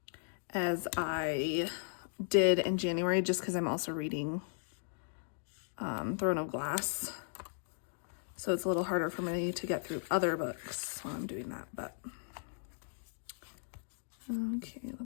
as I did in January, just because I'm also reading Throne of Glass. So it's a little harder for me to get through other books while I'm doing that, but okay,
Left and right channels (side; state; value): right; silent; digital silence